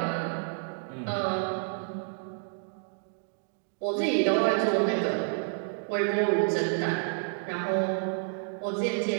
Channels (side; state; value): left; silent; 58 dB below the other